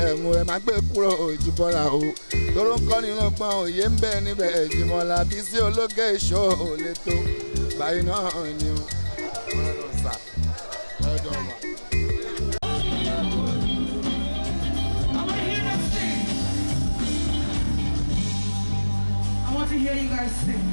ẹ̀hún ẹ má gbé kúrò Jíbọ́lá o tóró ń kọ́ nínú gbọ́n òye ń bẹ níbẹ̀ Jíbọ́lá Bísí Olókè Show lè tó báyìí náà ni o. I want to hear you guys sing.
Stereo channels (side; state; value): both; inverted; correlation -1.00